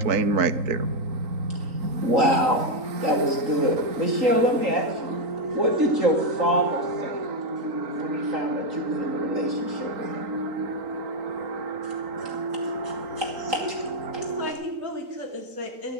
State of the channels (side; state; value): left; late; 3.9 ms